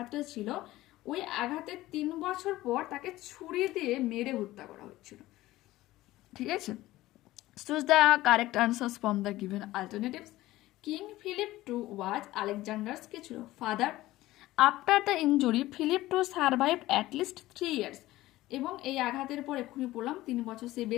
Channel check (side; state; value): right; quieter; 16.8 dB